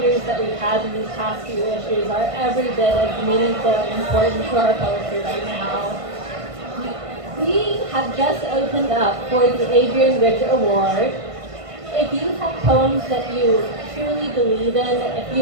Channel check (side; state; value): left; late; 1.5 ms